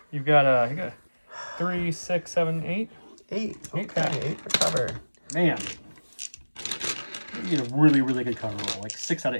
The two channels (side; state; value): both; inverted; correlation -1.00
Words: You've got you got 3, 6, 7, 8. 8. Eight Okay, 8 for cover. Man. You get a really, really good cover roll. Like 6 out